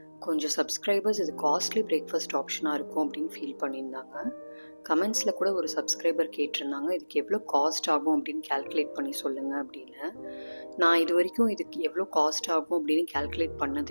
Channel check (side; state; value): both; inverted; correlation -1.00